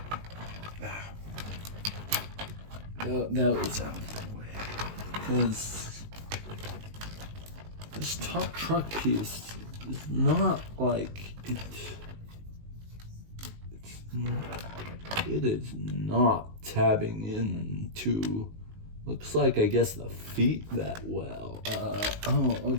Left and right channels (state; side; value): late; left; 19 ms